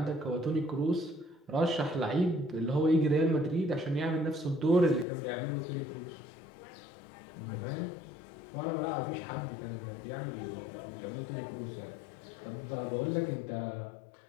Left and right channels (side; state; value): right; drops out; at 5.1 s